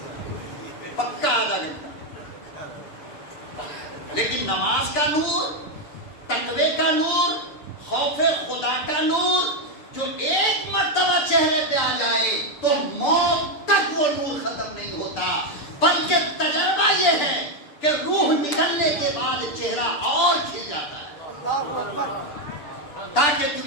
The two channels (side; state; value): right; late; 6.9 ms